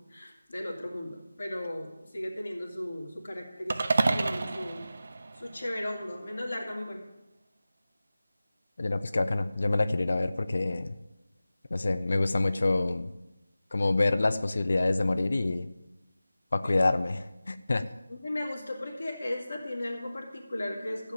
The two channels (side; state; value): both; inverted; correlation -0.96